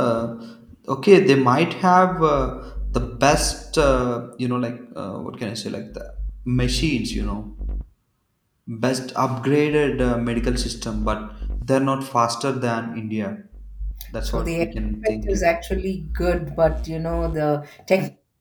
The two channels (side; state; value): both; identical; correlation 1.00